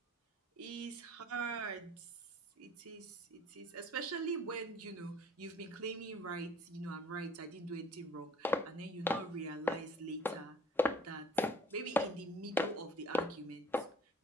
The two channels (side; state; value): both; normal; correlation 0.51